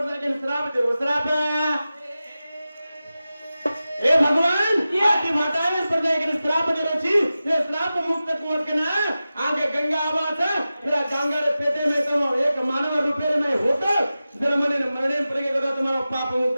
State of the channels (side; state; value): both; inverted; correlation -0.94